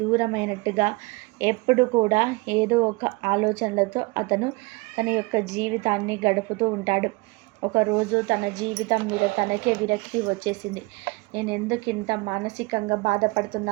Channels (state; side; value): quieter; left; 25.3 dB